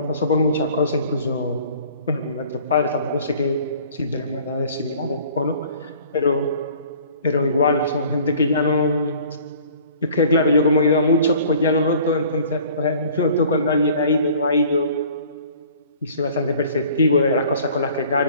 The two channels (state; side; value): inverted; both; correlation -0.51